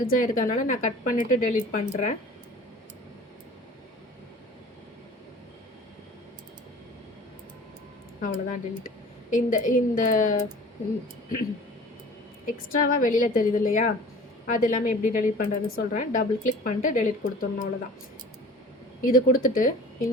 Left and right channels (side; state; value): both; normal; correlation 0.44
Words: இருக்கிறதுனால நான் கட் பண்ணிவிட்டு டெலீட் பண்ணுறேன். அவ்வளோதான் டெலீட். இந்த இந்த எக்ஸ்ட்ராவாக வெளியில் தெரியுது இல்லையா, அது எல்லாமே எப்படி டெலீட் பண்ணுறதுன்னு சொல்கிறேன். டபுள் கிளிக் பண்ணிட்டு டெலீட் கொடுத்துடணும், அவ்வளோதான். இது கொடுத்துட்டு